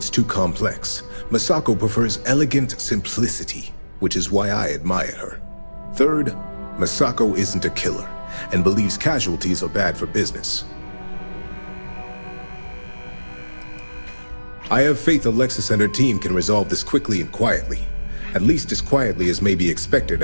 too complex. Masako prefers elegant simplicity, which is why I admire her. Third, Masako isn't a killer, and believes casualties are bad for business. I have faith Alexis and her team can resolve this quickly and quietly. At least as quietly as may be expected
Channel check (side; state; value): both; inverted; correlation -1.00